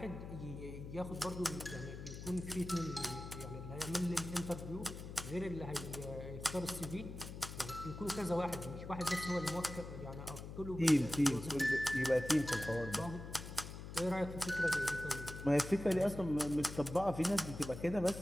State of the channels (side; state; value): left; noise; hum, 10 dB below the sound